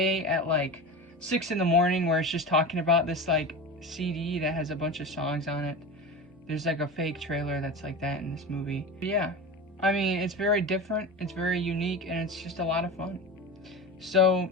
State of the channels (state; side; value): normal; both; correlation 0.27